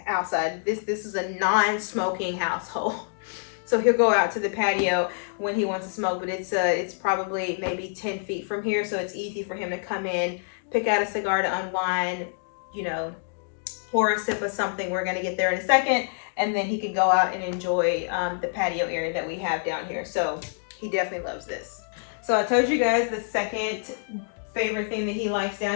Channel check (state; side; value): silent; right; digital silence